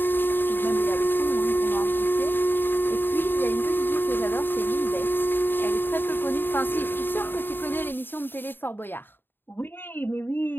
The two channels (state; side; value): late; right; 0.097 ms